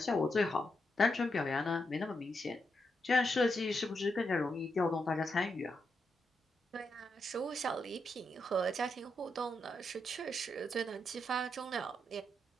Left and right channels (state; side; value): normal; both; correlation 0.83